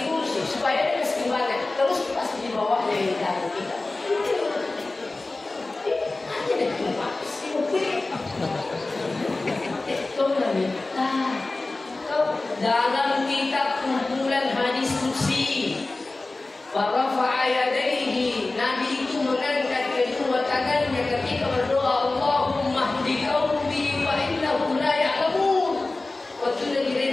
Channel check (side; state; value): right; quieter; 3.2 dB